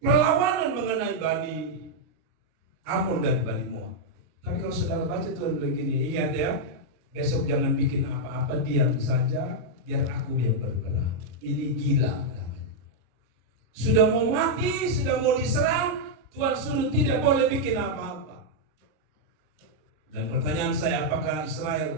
perlawanan mengenai Bani Amon dan Bani Moab. Tapi kalau saudara baca Tuhan begini, ingat ya, besok jangan bikin apa-apa, diam saja, biar aku yang berperang. Ini gila namanya. Sudah mau mati, sudah mau diserang, Tuhan suruh tidak boleh bikin apa-apa. Dan pertanyaan saya, apakah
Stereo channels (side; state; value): left; late; 33 ms